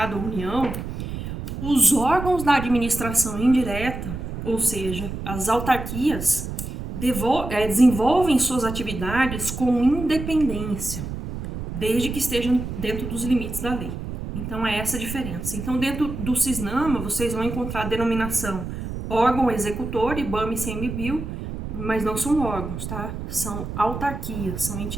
União, os órgãos da administração indireta, ou seja, as autarquias, desenvolvem suas atividades com independência, desde que estejam dentro dos limites da lei. Então é essa a diferença. Então dentro do CISNAMA vocês vão encontrar a denominação órgão executor, IBAMA e ICMBio, mas não são órgãos, tá? São autarquias, são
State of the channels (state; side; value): noise; right; rumble, 7 dB below the sound